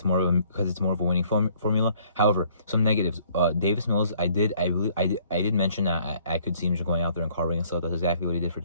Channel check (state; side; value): inverted; both; correlation -0.60